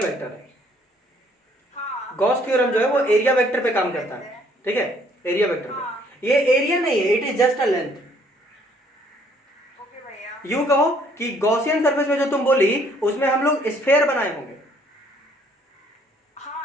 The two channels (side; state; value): both; normal; correlation 0.63